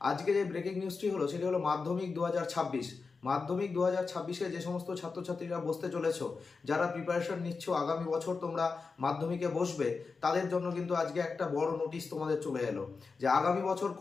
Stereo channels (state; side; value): quieter; right; 4.6 dB